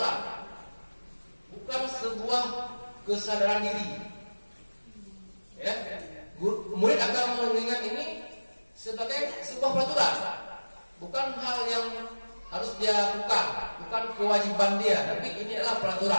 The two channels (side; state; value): both; inverted; correlation -1.00